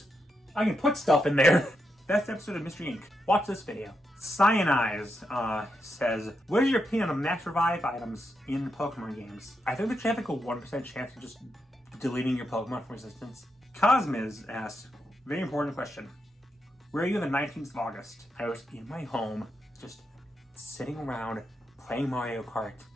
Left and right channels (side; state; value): both; normal; correlation 0.84